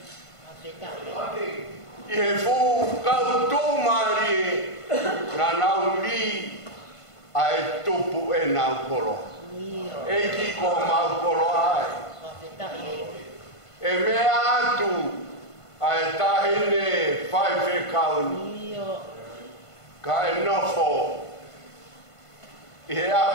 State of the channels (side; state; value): right; late; 1.5 ms